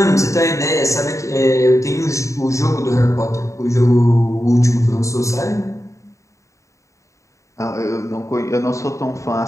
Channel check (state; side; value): late; right; 0.15 ms